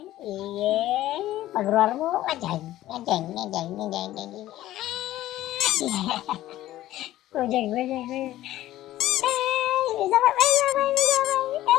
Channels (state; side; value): quieter; right; 14.6 dB